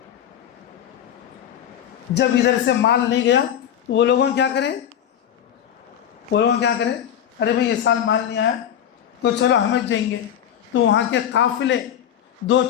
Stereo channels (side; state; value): right; quieter; 9.9 dB